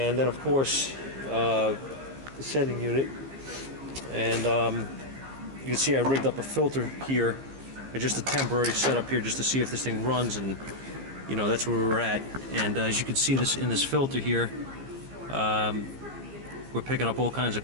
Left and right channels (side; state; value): left; late; 15 ms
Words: then, of course, the sending unit. And you can see I rigged up a filter here, just a temporary setup here, just to see if this thing runs, and you know, that's where we're at. And as you can see this in this filter here, we're picking up all kinds of